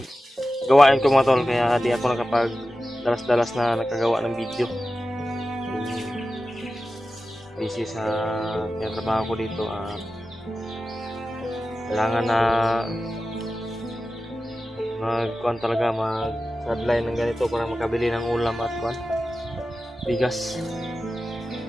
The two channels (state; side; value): normal; both; correlation 0.93